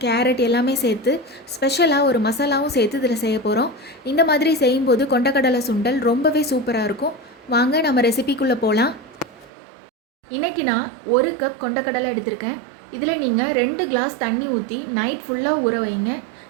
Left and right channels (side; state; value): left; drops out; at 9.5 s